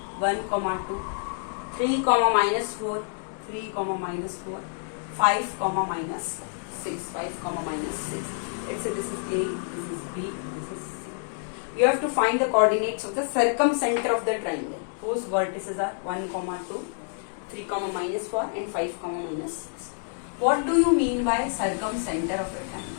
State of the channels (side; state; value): right; silent; digital silence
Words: 1, 2, 3, minus 4, 3, minus 4, 5, minus 6, 5, minus 6. Let's say this is A, this is B, this is C. You have to find the coordinates of the circumcenter of the triangle whose vertices are 1, 2, 3, minus 4 and 5, minus 6. What do you mean by circumcenter of a triangle?